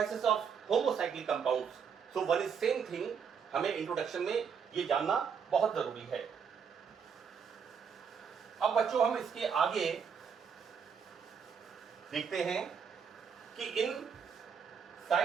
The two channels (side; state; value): left; quieter; 6.7 dB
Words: of homocyclic compounds, so one is same thing, हमें इंट्रोडक्शन में ये जानना बहुत जरूरी है। अब बच्चों, हम इसके आगे देखते हैं कि इन